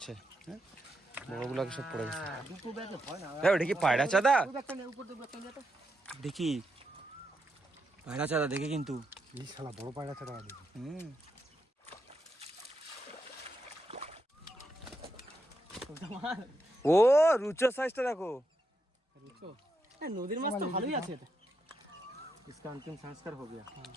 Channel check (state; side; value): normal; both; correlation 0.83